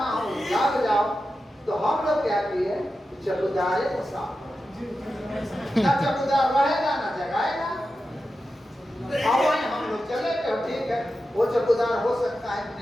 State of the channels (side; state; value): both; normal; correlation 0.91